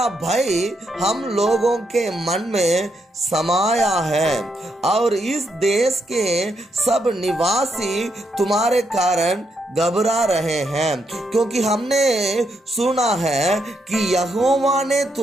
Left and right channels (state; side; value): normal; both; correlation 0.79